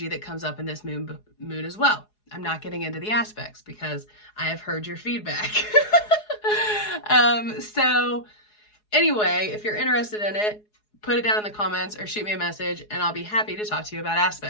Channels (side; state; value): right; late; 4.8 ms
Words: that comes up in this moon as well. I'm not getting into the aspects because I have heard your feedback. So anyway, if you're interested in it, put it down in the comments or shoot me a message, and I'll be happy to talk to you about